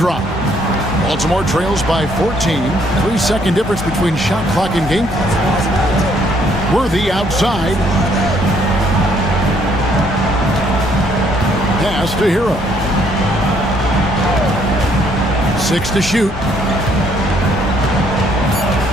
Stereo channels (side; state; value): both; normal; correlation 0.67